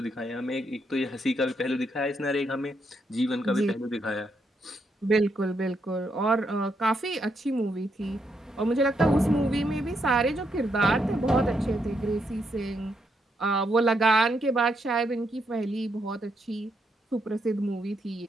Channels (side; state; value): both; normal; correlation 0.78